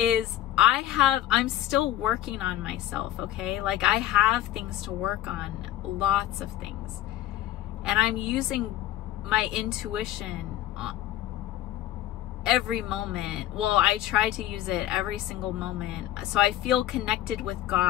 I'm still working on myself, okay? Like, I have things to work on, lots of things. And I'm using my intuition every moment. Well, I try to use it every single moment. So I feel connected with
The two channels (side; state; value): right; quieter; 13.4 dB